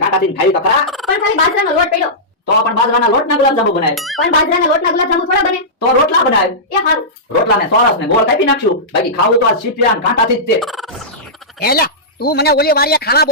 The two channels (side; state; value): both; normal; correlation -0.16